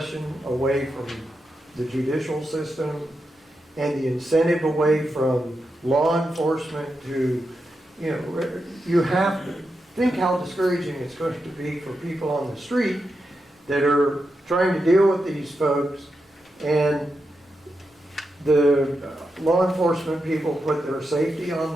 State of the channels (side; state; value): both; normal; correlation 0.87